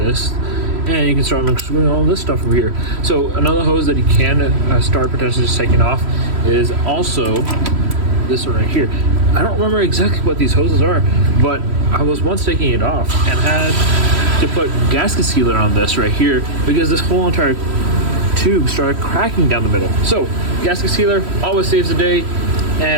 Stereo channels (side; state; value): left; late; 3.1 ms